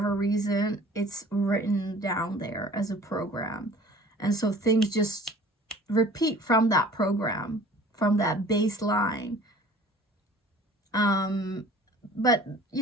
reason, it's written down there as a program. And so things just repeat from that program, from that baseline. But, you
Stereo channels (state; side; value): normal; both; correlation 0.47